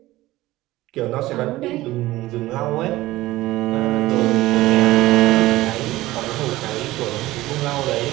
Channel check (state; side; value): quieter; left; 17.4 dB